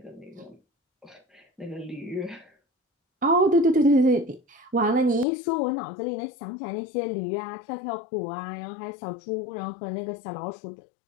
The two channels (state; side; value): drops out; right; at 5.2 s